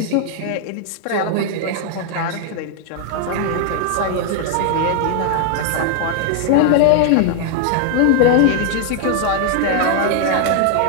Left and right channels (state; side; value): different; both; correlation 0.00